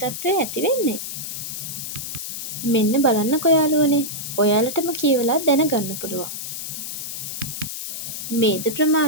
තත්ත්වය ඇති වෙන්නේ. මෙන්න බලන්නකෝ යාළුවනේ. ඔයාලටම කියවලා දැනගන්න පුළුවන්. මේද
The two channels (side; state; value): left; noise; hiss, 6 dB below the sound